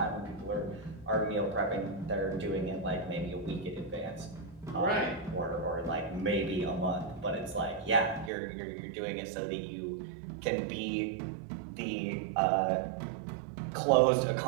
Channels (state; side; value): drops out; left; at 8.3 s